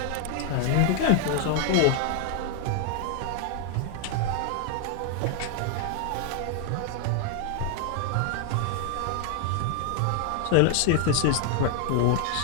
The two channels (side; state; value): both; different; correlation 0.00